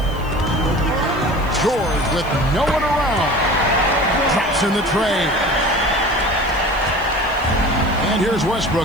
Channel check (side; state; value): left; noise; hiss, 24 dB below the sound